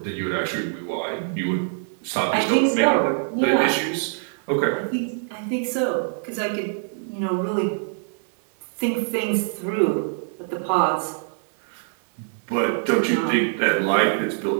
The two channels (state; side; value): silent; left; 63 dB below the other